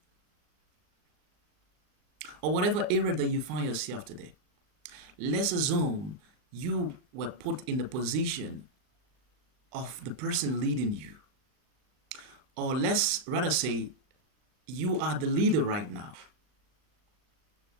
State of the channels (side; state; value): left; late; 39 ms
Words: or whatever area that you find yourself today. Let's assume you were put in the position of the person leading you. Or let's rather say you are the leader right now.